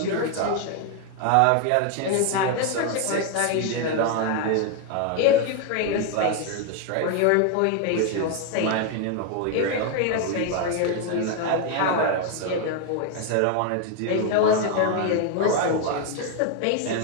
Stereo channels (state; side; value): different; both; correlation 0.01